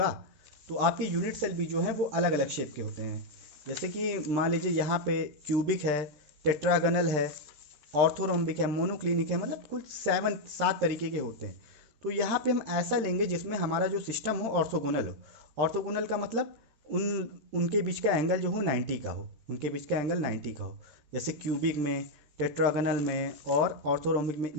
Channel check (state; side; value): late; left; 13 ms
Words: तो आपके यूनिट सेल भी जो है वो अलग अलग शेप के होते हैं। जैसे कि मान लीजिए यहाँ पे क्यूबिक है, टेट्रागनल है, ऑर्थोरोम्बिक है, मोनोक्लिनिक है, मतलब कुल 7 तरीके के होते हैं। तो यहाँ पे हम ऐसा लेंगे जिसमें हमारा जो सिस्टम हो ऑर्थोगोनल हो। ऑर्थोगोनल का मतलब उनके बीच का एंगल जो हो 90 का हो, उनके बीच का एंगल 90 का हो। जैसे क्यूबिक में, टेट्रागनल में और ऑर्थोरोम्बिक में,